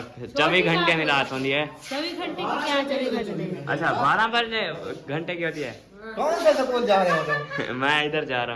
24 घंटे में रात होती है। 24 घंटे की क्या 24 घंटे? अच्छा 12 बजे घंटे की होती है। कौन से स्कूल जा रहे हो तुम? मैं इधर जा रहा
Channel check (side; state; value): both; identical; correlation 1.00